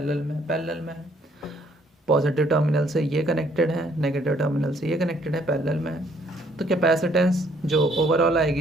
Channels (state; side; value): normal; both; correlation 0.65